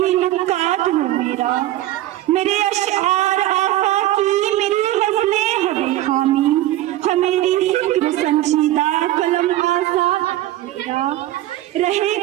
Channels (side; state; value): left; quieter; 14.9 dB